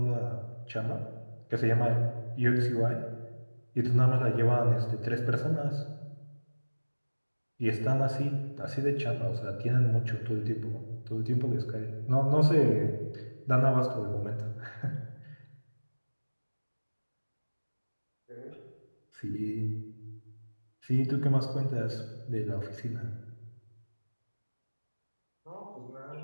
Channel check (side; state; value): both; inverted; correlation -1.00